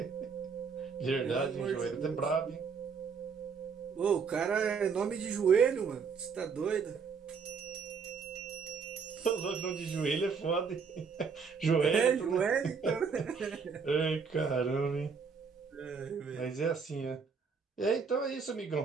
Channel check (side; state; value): left; quieter; 5.7 dB